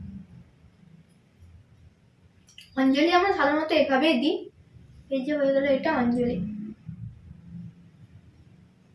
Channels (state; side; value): identical; both; correlation 1.00